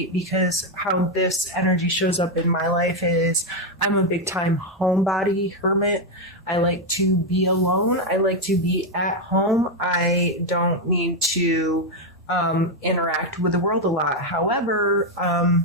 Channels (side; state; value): both; normal; correlation 0.04